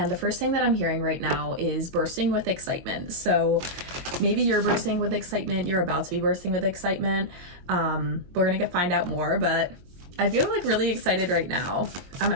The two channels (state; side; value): late; left; 22 ms